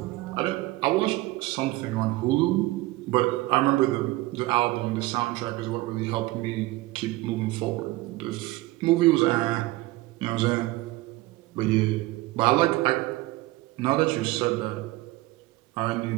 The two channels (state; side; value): quieter; left; 19.5 dB